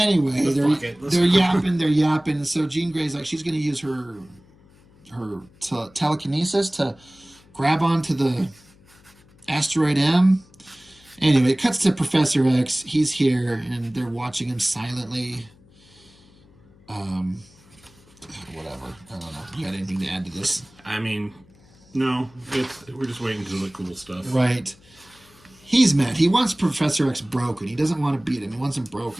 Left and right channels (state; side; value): noise; left; hum, 28 dB below the sound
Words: they're yapping. So Jean Grey's like, she's going to use her telekinesis to grab onto the asteroid M. Anyway, it cuts to Professor X. He's here, and they're watching him silently. Whatever. I don't know. You got anything to add to this? I mean, no. We're just waiting for the cool stuff. Right. He's mad. He wants Professor X broken. He doesn't want to beat him. He wants him